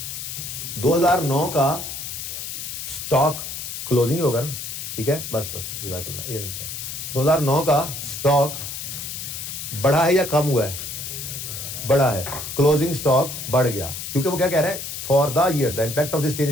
2009 का स्टॉक क्लोजिंग होगा ना, ठीक है? बस ये 2009 का स्टॉक बढ़ा है या कम हुआ है? बढ़ा है। क्लोजिंग स्टॉक बढ़ गया क्योंकि वो क्या कह रहा है? For the year the impact of this change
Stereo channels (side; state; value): left; noise; hiss, 7 dB below the sound